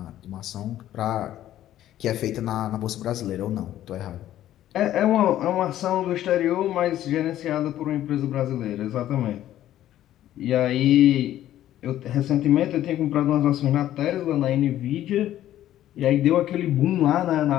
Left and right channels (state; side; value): quieter; right; 12.7 dB